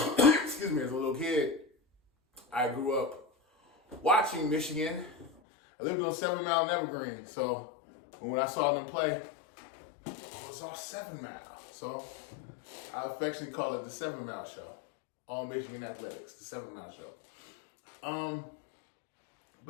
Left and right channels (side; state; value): right; drops out; at 5.3 s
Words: me, as a little kid, I grew up watching Michigan. I lived on 7 Mile and Evergreen. So when I saw them play, it was all 7 Mile. So I affectionately call it the 7 Mile Show. All Michigan Athletics, the 7 Mile Show.